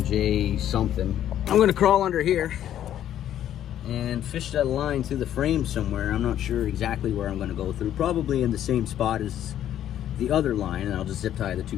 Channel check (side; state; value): right; quieter; 11.1 dB